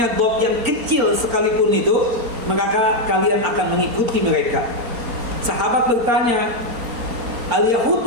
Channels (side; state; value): left; late; 4.3 ms